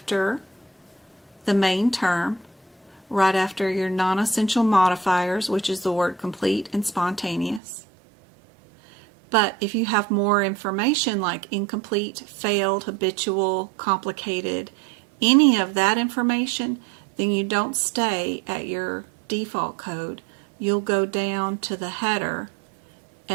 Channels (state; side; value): drops out; left; at 7.6 s